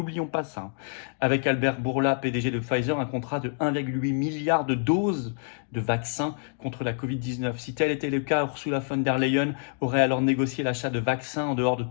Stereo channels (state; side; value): silent; right; digital silence